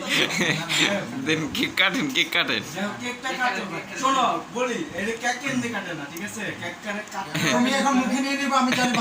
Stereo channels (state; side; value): identical; both; correlation 1.00